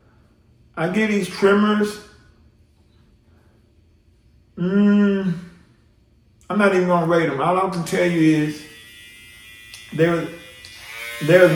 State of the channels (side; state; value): both; identical; correlation 1.00